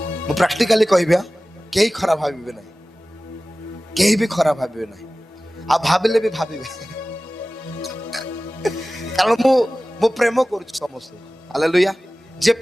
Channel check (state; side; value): normal; both; correlation 0.97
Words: मु प्रैक्टिकली कहबिया केही खराब भाबिबे नहीं, केही भी खराब भाबिबे नहीं, आ भाबिले भी भाबिबे कारण मु प्रेम करूछि समस्त। हालेलुया। जे